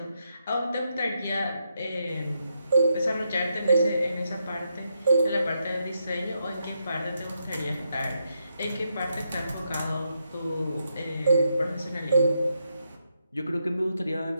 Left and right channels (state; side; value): inverted; both; correlation -0.81